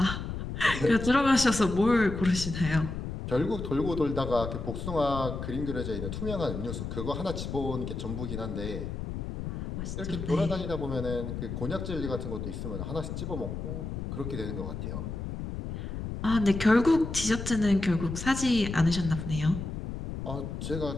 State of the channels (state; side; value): noise; left; rumble, 6 dB below the sound